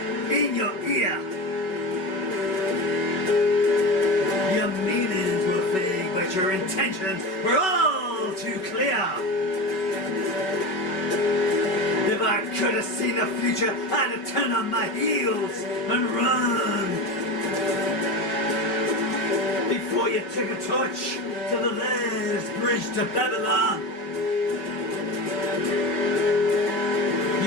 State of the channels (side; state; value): right; late; 5.3 ms